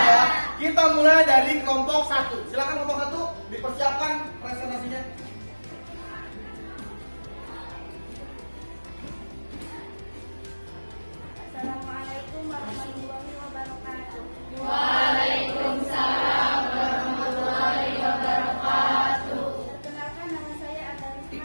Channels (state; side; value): inverted; both; correlation -1.00